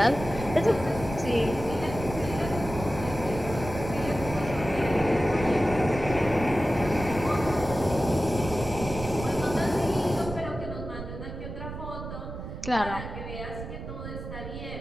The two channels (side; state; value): right; noise; rumble, 9 dB below the sound